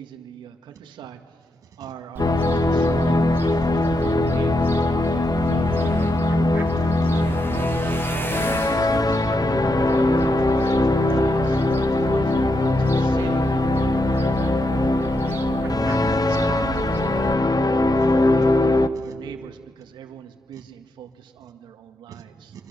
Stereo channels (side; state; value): both; normal; correlation 0.82